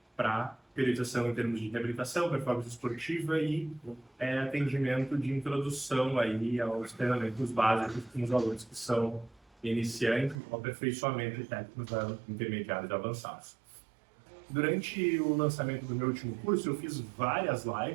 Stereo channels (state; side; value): drops out; left; at 10.4 s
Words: para periodização em termos de reabilitação, performance esportiva e atendimento de introdução aí aos treinamentos básicos com os alunos que são iniciantes, o aperfeiçoamento técnicos intermediários e avançados. Durante o lançamento do meu último curso, eu fiz várias